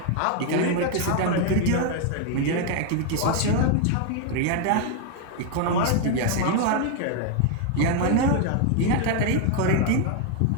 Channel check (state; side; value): different; both; correlation 0.00